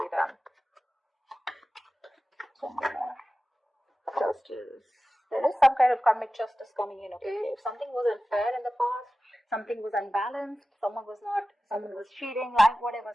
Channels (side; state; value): both; normal; correlation 0.95